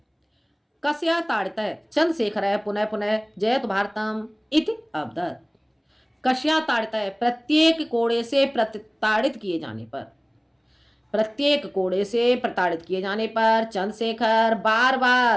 कस्या ताड़ितः चंद्रशेखर पुनः पुनः जयतु भारतम इति अवदत्। कस्या ताड़ितः? प्रत्येक कोड़े से प्रताड़ित किए जाने पर, प्रत्येक कोड़े से प्रताड़ित किए जाने पर चंद्रशेखर बार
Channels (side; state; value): both; identical; correlation 1.00